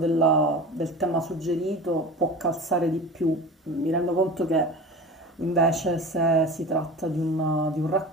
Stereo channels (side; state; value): both; normal; correlation 0.34